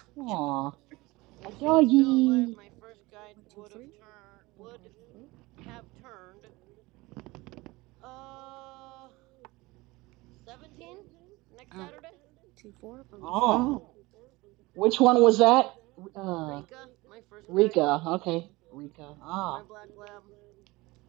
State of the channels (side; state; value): left; quieter; 21.7 dB